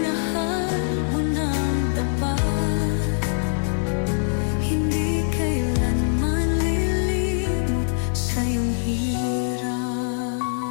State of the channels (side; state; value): right; silent; digital silence